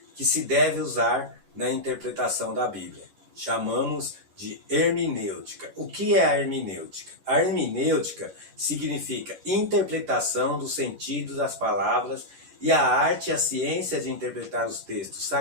que se deve usar na interpretação da Bíblia. Chamamos de hermenêutica. O que é a hermenêutica? A hermenêutica significa interpretação do sentido das palavras e a arte e a ciência de interpretar os textos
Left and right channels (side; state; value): left; late; 11 ms